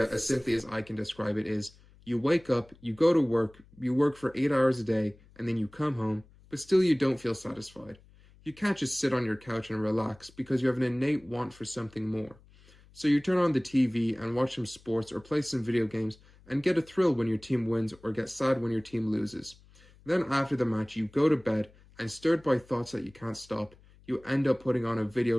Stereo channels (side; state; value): left; noise; hum, 26 dB below the sound